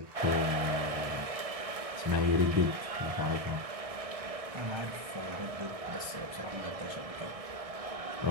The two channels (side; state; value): left; late; 1.6 ms